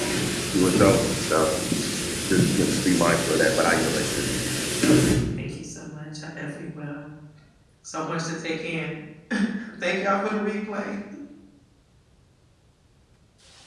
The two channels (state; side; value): identical; both; correlation 1.00